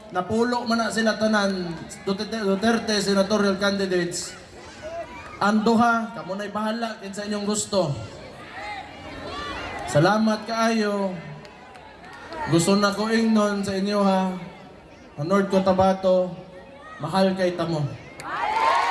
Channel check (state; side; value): identical; both; correlation 1.00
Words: napulo man na sila tanan Duterte senatorial candidates. Anduha, kamo na'y bahala kinsa inyong gusto. Salamat kaayo. Gusto na ko ingnon sa inyo ha. North Cotabato, mahal kay tamo.